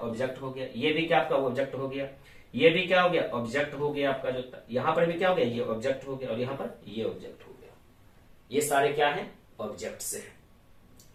हो गया। ये भी क्या आपका ऑब्जेक्ट हो गया, ये भी क्या हो गया, ऑब्जेक्ट हो गया आपका जो था। यहां पर भी क्या हो गया, ये ऑब्जेक्ट हो गया, और यहां पर ये ऑब्जेक्ट हो गया। ये सारे क्या है, ऑब्जेक्ट से।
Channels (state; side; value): identical; both; correlation 1.00